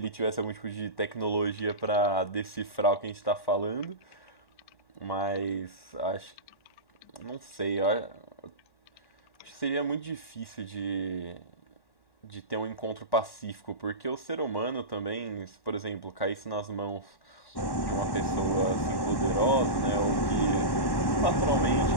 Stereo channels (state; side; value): late; right; 1.1 ms